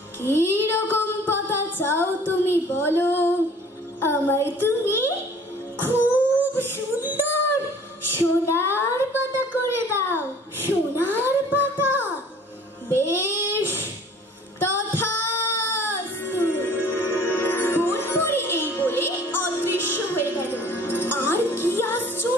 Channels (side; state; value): both; normal; correlation 0.51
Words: কি রকম পাতা চাও তুমি বলো। আমায় তুমি খুব সুন্দর সোনার পাতা করে দাও। সোনার পাতা? বেশ, তথাস্তু। বনপরী এই বলে অদৃশ্য হয়ে গেল। আর কি